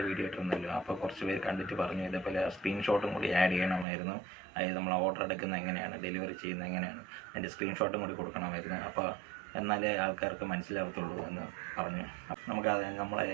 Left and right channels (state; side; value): drops out; left; at 3.9 s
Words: വീഡിയോ ഇട്ടിരുന്നല്ലോ. അപ്പോൾ കുറച്ച് പേര് കണ്ടിട്ട് പറഞ്ഞു ഇതേപോലെ സ്ക്രീൻഷോട്ടും കൂടി ആഡ് ചെയ്യണമായിരുന്നു. അതായത് നമ്മൾ ഓർഡർ എടുക്കുന്നത് എങ്ങനെയാണ്, ഡെലിവറി ചെയ്യുന്നത് എങ്ങനെയാണ്, അതിൻ്റെ സ്ക്രീൻഷോട്ടും കൂടി കൊടുക്കണമായിരുന്നു. അപ്പോൾ എന്നാലേ ആൾക്കാർക്ക് മനസ്സിലാവത്തുള്ളൂ എന്ന് പറഞ്ഞു. നമുക്ക് നമ്മൾ